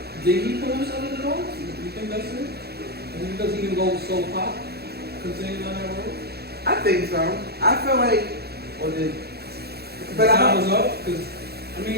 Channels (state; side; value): late; left; 0.46 ms